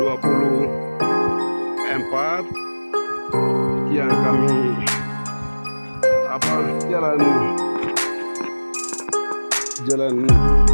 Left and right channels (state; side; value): inverted; both; correlation -1.00